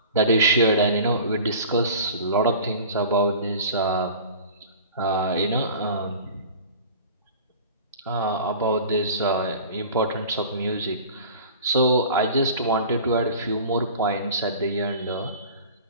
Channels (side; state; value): both; inverted; correlation -0.41